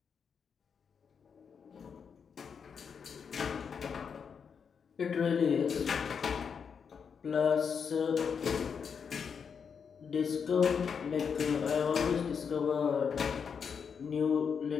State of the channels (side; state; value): right; quieter; 6.5 dB